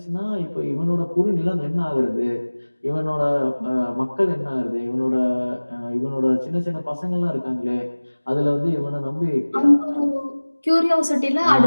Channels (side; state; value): both; inverted; correlation -1.00